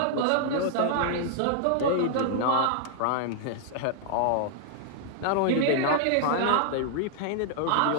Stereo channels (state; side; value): different; both; correlation -0.01